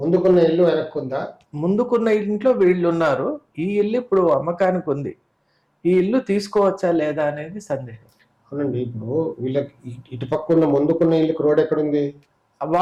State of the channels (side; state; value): both; identical; correlation 1.00